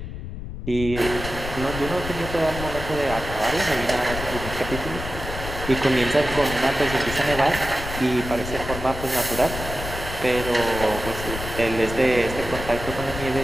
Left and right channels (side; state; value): left; noise; rumble, 8 dB below the sound